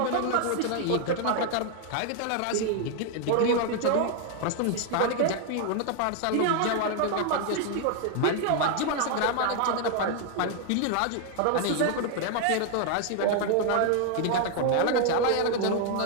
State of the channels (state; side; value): different; both; correlation 0.00